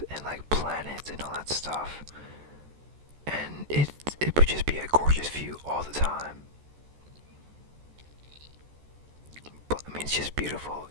and like planets and all that stuff, and it would just be a gorgeous view all the time. But I mean, it's just beautiful,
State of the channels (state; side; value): late; left; 14 ms